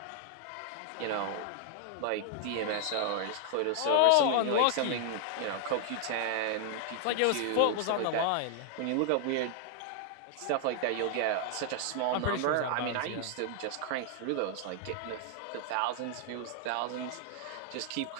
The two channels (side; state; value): both; different; correlation -0.01